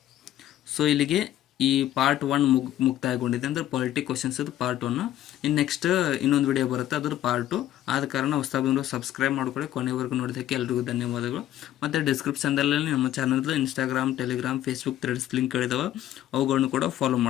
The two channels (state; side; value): quieter; right; 12.7 dB